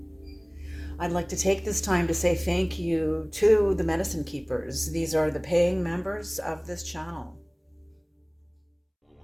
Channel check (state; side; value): identical; both; correlation 1.00